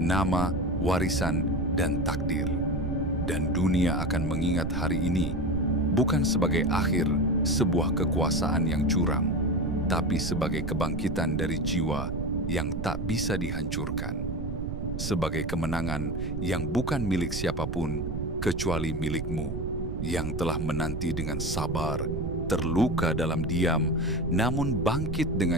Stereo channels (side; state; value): right; noise; rumble, 4 dB below the sound